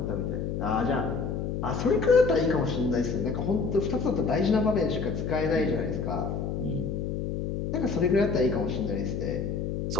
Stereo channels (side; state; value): left; noise; hum, 3 dB below the sound